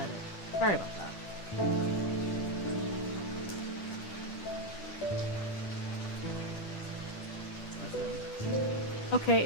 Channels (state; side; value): late; right; 10 ms